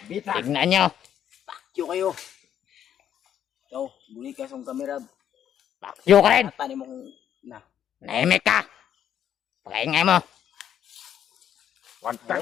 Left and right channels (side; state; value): right; quieter; 9.8 dB